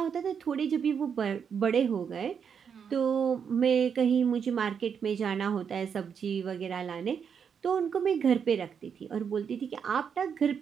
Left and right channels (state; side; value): quieter; left; 7.0 dB